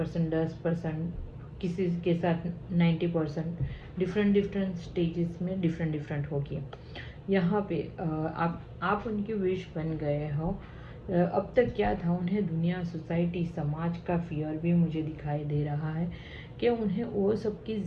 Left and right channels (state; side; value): identical; both; correlation 1.00